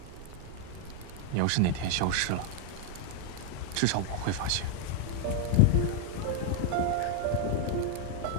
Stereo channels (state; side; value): different; both; correlation 0.00